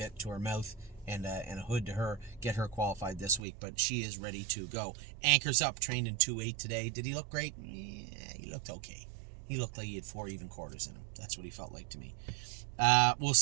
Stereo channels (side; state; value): left; drops out; at 3.4 s